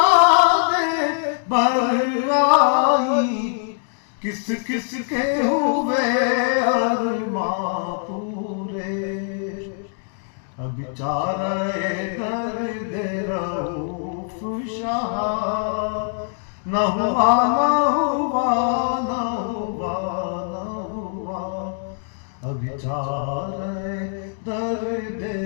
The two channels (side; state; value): right; silent; 60 dB below the other